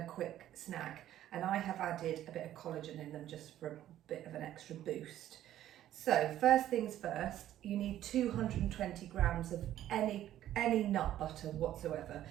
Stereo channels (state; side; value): quieter; left; 12.4 dB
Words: quick snack, and I have added a bit of collagen in them just for a bit of an extra boost. So first things first, you need 220 grams of any nut butter whatsoever.